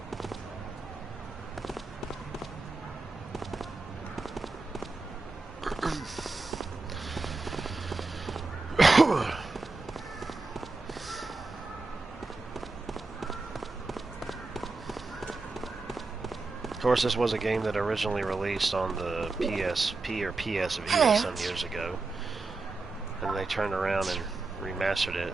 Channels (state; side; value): quieter; left; 3.5 dB